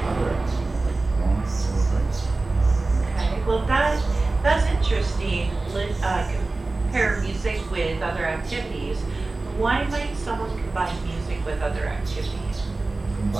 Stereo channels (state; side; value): quieter; left; 3.4 dB